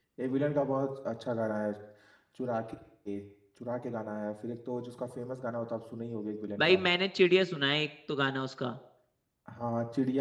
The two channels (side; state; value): both; identical; correlation 1.00